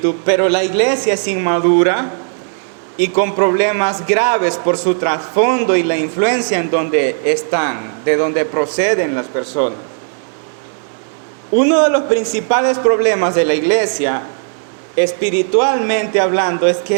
pero la iglesia es inmadura y con problemas graves por su trasfondo y la influencia en donde están, de donde proceden las personas. Uno de los principales problemas de la iglesia, espiritualmente hablando, es que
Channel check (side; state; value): left; silent; digital silence